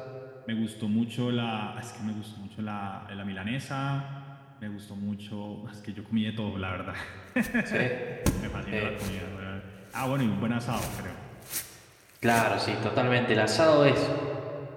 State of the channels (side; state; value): both; identical; correlation 1.00